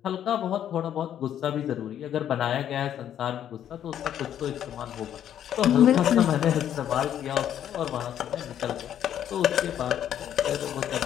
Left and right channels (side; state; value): right; quieter; 10.2 dB